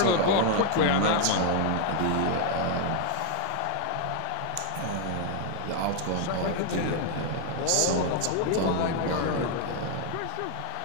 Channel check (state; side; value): different; both; correlation 0.00